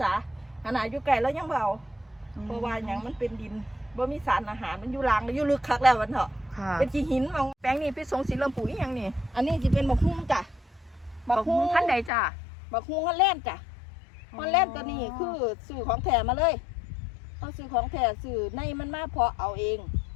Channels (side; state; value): right; drops out; at 12.1 s